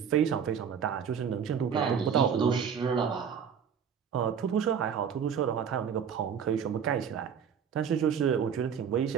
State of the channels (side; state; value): left; quieter; 7.4 dB